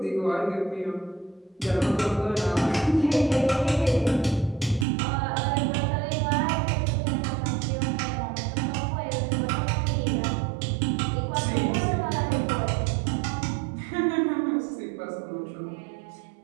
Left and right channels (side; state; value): left; drops out; at 4.9 s